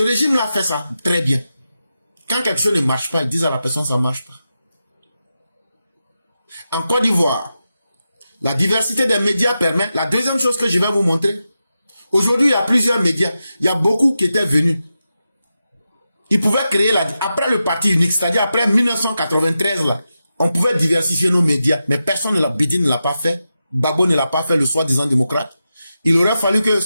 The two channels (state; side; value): inverted; both; correlation -0.90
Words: régime-là fait ça très bien. Quand quelque chose ne marche pas, ils disent à la personne ça ne marche pas. En Côte d'Ivoire, la diversité des médias permet... La deuxième chose que je vais vous montrer. Aujourd'hui, il y a plusieurs médias. Il y a beaucoup qui étaient venus. Ils pouvaient créer après le parti unique, c'est-à-dire après 1993, là, on pouvait diversifier nos médias. Mais personne ne l'a pas fait. Gbagbo ne l'a pas fait, le soi-disant démocrate. Il aurait fallu que